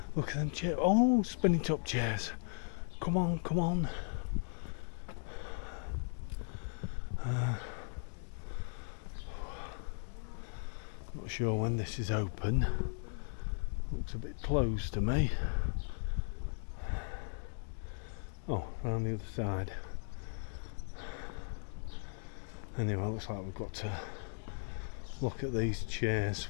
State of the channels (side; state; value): right; silent; 53 dB below the other